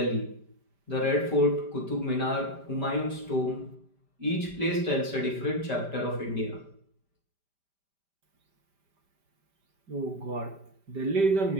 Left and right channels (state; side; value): late; left; 5.1 ms